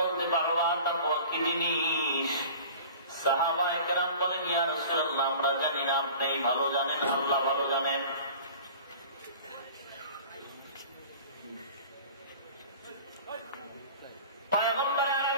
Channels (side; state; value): both; inverted; correlation -0.42